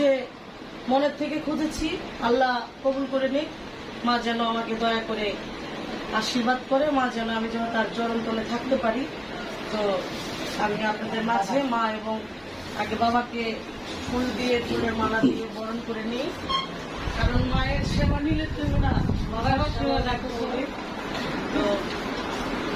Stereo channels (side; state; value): both; identical; correlation 1.00